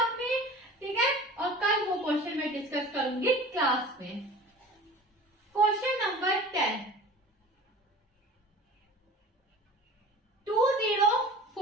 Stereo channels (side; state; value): both; normal; correlation 0.40